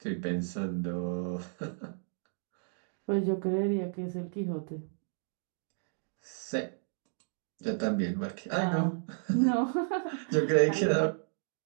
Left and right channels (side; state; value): left; silent; digital silence